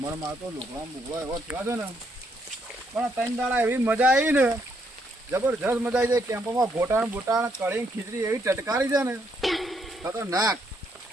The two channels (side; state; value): both; normal; correlation 0.74